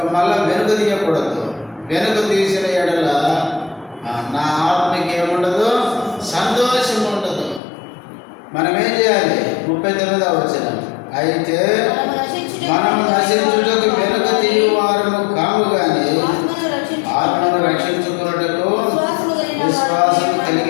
మళ్ళా వెనుక తీయకూడదు. వెనుక తీసిన ఎడల నా ఆత్మకి ఏముండదు, సంతోషం ఉండదు. మనం ఏం చేయాలి? 39వ వచనం, అయితే మనము నశించుటకు వెనుక తీయువారము కాము గాని ఆత్మను రక్షించుకున్నటకు విశ్వాసం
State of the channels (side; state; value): right; drops out; at 7.6 s